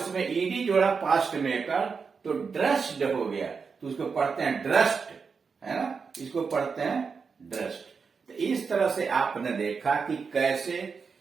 ईडी जोड़ा पास्ट में कर तो ड्रेस्ड हो गया, तो उसको पढ़ते हैं ड्रेस्ड, है ना, इसको पढ़ते हैं ड्रेस्ड। तो इस तरह से आपने देखा कि कैसे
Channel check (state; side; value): quieter; left; 5.4 dB